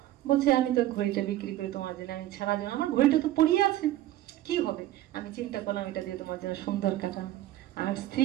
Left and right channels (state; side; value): quieter; left; 14.2 dB